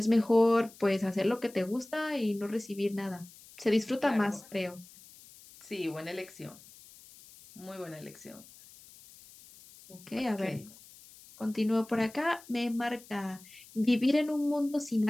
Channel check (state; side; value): noise; left; hiss, 21 dB below the sound